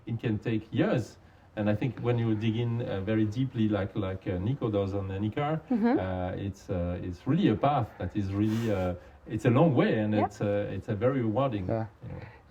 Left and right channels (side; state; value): both; identical; correlation 1.00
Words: It can take years. And I think when you dig in very deeply, like Nico does on Anika, it's really a path that is really it's a long way, and it's a very rewarding. Yeah.